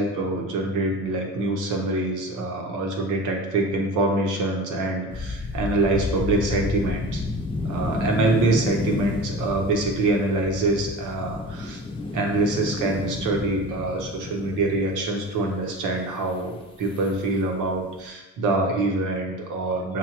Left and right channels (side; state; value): both; normal; correlation 0.33